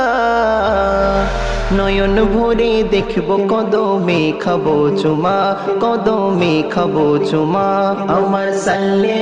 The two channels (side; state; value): both; identical; correlation 1.00